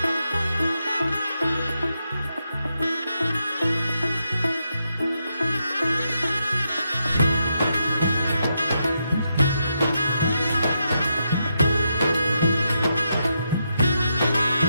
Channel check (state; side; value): inverted; both; correlation -0.83